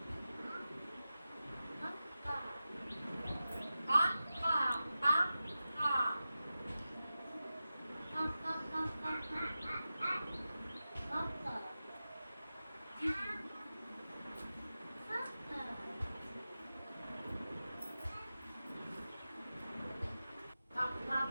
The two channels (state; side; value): inverted; both; correlation -0.93